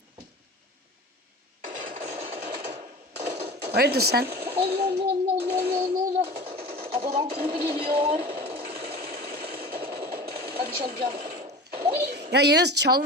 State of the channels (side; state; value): both; normal; correlation 0.35